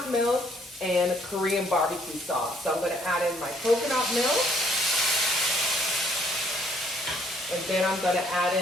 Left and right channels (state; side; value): normal; both; correlation 0.65